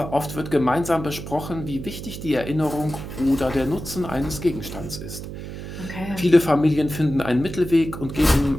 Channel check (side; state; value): right; noise; hum, 9 dB below the sound